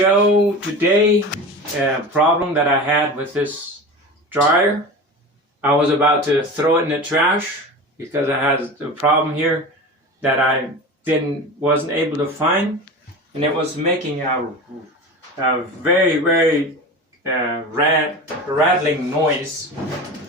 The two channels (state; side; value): normal; both; correlation 0.30